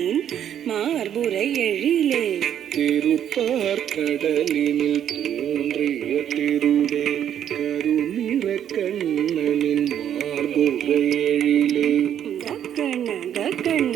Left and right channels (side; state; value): left; quieter; 9.8 dB